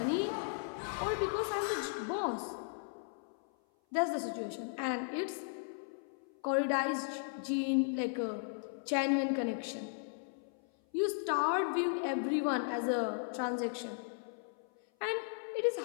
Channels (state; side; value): silent; right; 54 dB below the other